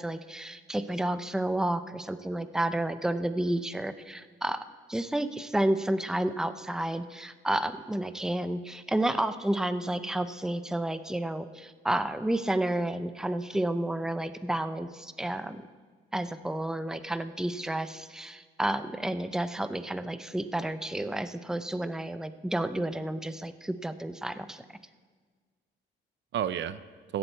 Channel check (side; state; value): both; normal; correlation 0.91